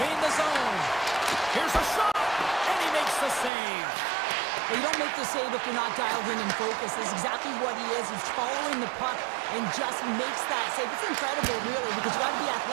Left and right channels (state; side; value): drops out; left; at 3.5 s